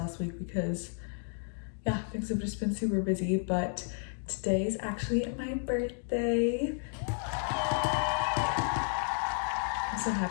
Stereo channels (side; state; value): right; silent; 56 dB below the other